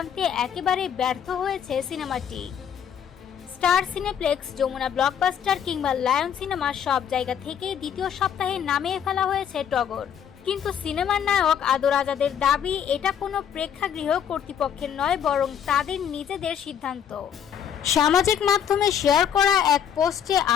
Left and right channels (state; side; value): quieter; right; 8.5 dB